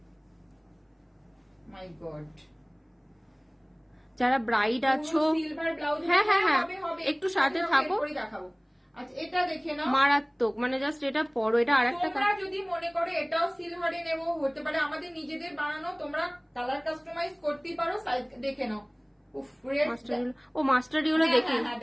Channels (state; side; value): identical; both; correlation 1.00